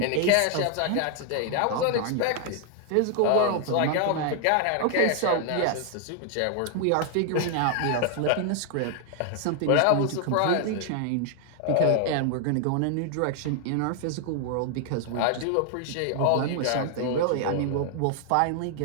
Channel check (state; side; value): different; both; correlation 0.00